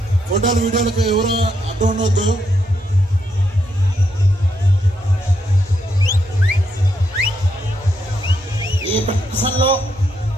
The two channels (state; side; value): normal; both; correlation 0.79